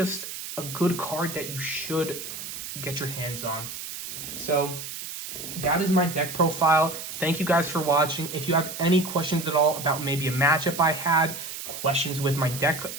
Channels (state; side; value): noise; right; hiss, 8 dB below the sound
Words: a good card that you should get your hands on. So that is my deck profile. Thank you guys for watching. If you have any questions at all about maybe a matchup I had, questions with my deck,